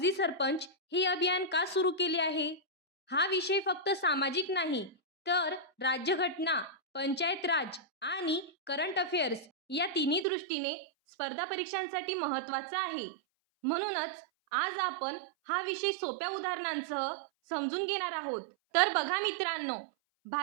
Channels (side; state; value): left; drops out; at 10.2 s